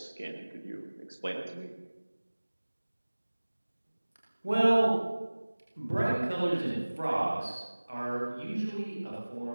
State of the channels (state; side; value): inverted; both; correlation -1.00